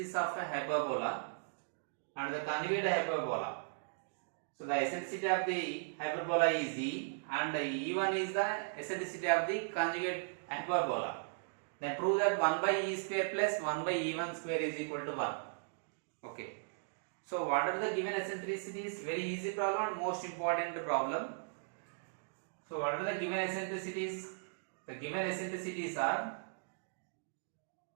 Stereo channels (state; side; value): silent; left; digital silence